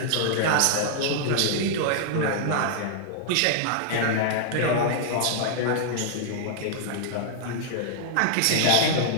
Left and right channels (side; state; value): both; different; correlation -0.01